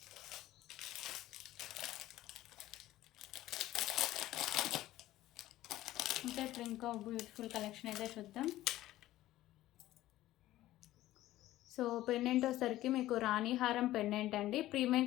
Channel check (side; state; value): right; quieter; 15.2 dB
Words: ఇంకా ఇప్పుడు ఇంకో బ్యూటిఫుల్ కలెక్షన్ అయితే చూద్దాం. సో పెండెంట్ వచ్చేసరికి మీకు రాణి హారం పెండెంట్ అండి, ప్రీమియం